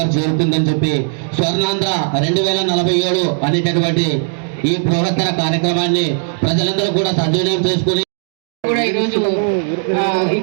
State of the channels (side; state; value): left; silent; digital silence